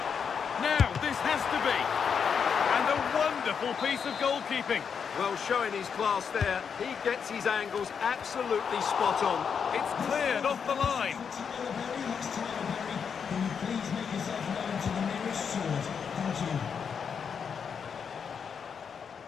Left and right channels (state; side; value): quieter; right; 6.7 dB